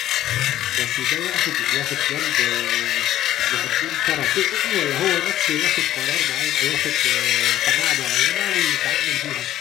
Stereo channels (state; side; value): quieter; right; 13.0 dB